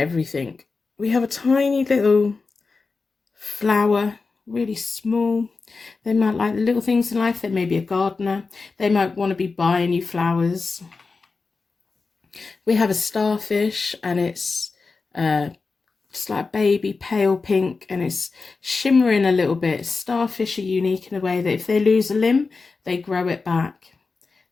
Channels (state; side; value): quieter; right; 4.2 dB